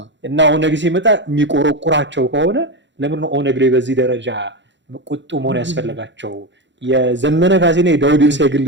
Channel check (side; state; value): left; late; 0.53 ms